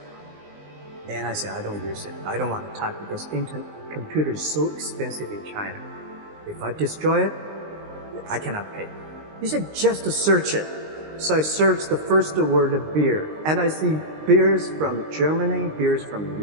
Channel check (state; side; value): late; left; 19 ms